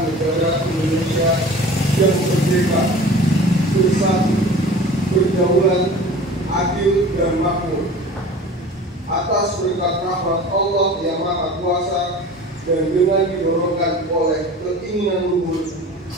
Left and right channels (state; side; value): normal; both; correlation 0.40